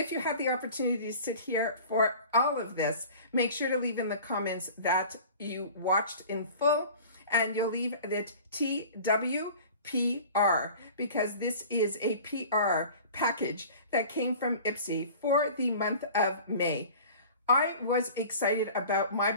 you have the opportunity to sit here for all of this, make sure to leave in the comments that you watched in full, and you'll leave it TWPR, because this is a PR package that came from IPSY for the month of May. I was excited about my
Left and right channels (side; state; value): both; inverted; correlation -0.42